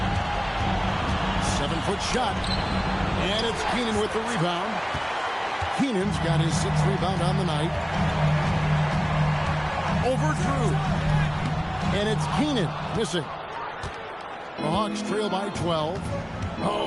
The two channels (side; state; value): both; identical; correlation 1.00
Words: 7-foot shot. And it's Keenan with the rebound. Keenan's got his 6th rebound on the night. Over Drew. And it's Keenan missing. The Hawks trail by 12.